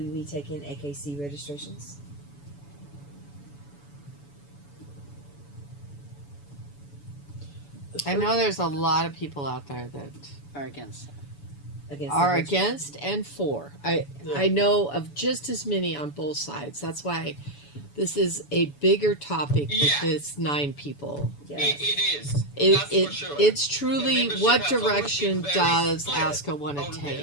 be taking AKC registrations? I know there's a lot of people out there that Are against that. Against are the hardship? against and for. I know of just as many on both sides. That's why this is a bigger topic with Yeah. this 9 people. Yes. It is. That's for sure. It's truly The membership what has always direction been very does split ASCA want to on take?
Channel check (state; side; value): late; right; 7.0 ms